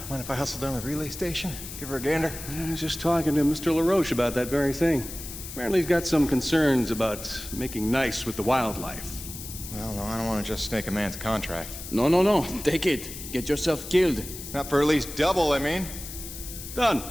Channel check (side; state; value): left; noise; hiss, 11 dB below the sound